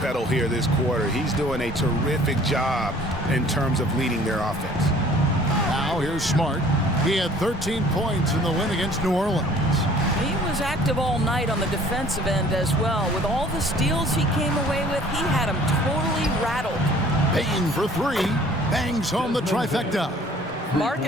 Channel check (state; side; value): normal; both; correlation 0.53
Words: pedal here this quarter. He's doing a terrific job in terms of leading their offense. Now here's Smart. He had 13 points in the win against New Orleans. He was active all night on the defensive end as well. With all the steals he came away with, he had him totally rattled. Bain for 3. Bangs home the trifecta.